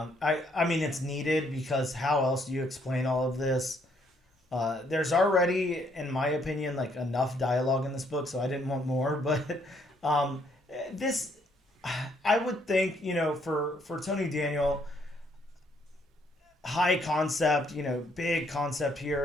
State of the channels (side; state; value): both; normal; correlation 0.69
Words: I mean, it's needed because how else do you explain all of this? There's already, in my opinion, like enough dialogue in this book, so I didn't want more. But um, this, I would think, for Tony Daniel, high concept, big concept